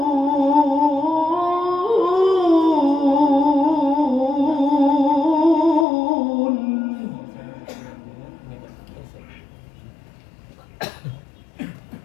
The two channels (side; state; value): right; drops out; at 5.9 s